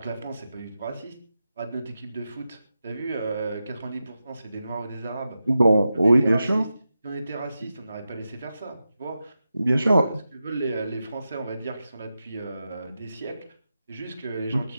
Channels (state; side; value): inverted; both; correlation -0.90